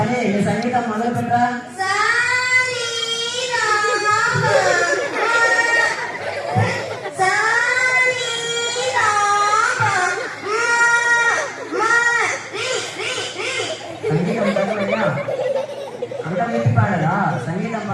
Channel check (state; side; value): identical; both; correlation 1.00